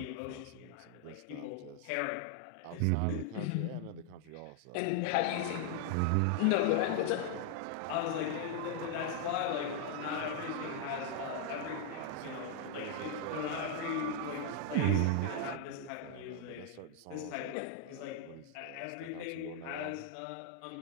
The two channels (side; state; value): both; different; correlation 0.00